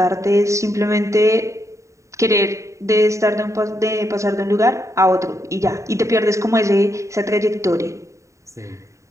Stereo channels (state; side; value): late; left; 0.15 ms